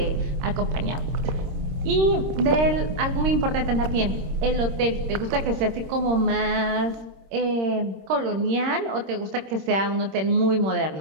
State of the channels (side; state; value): left; late; 26 ms